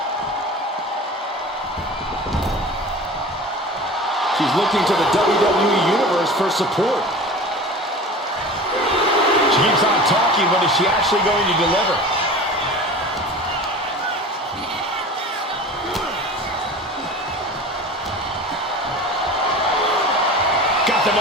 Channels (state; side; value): normal; both; correlation 0.37